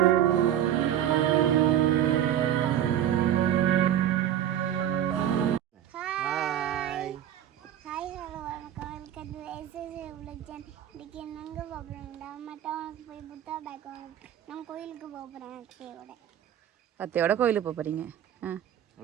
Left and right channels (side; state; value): left; quieter; 10.8 dB